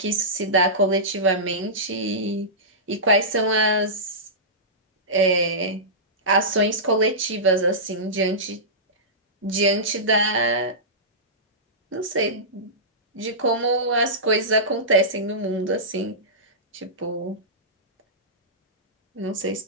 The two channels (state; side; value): normal; both; correlation -0.17